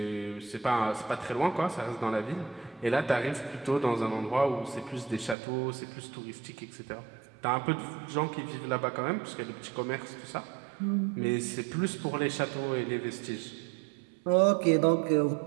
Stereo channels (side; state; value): left; drops out; at 5.4 s